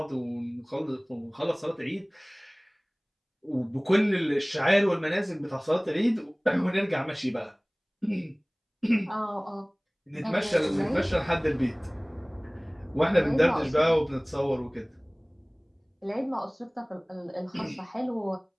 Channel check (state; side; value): identical; both; correlation 1.00